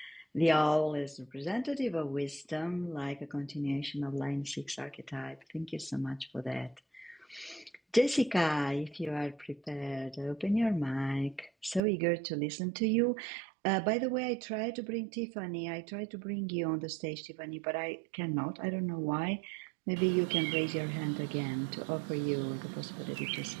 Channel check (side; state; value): left; drops out; at 11.8 s